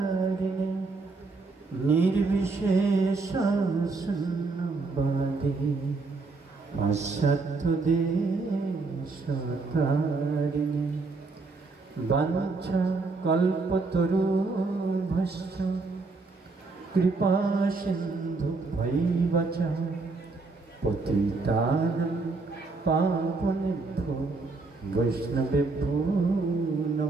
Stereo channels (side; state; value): left; quieter; 3.8 dB